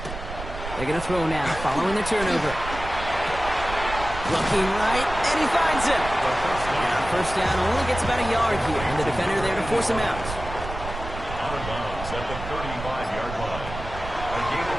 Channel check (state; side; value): noise; right; rumble, 9 dB below the sound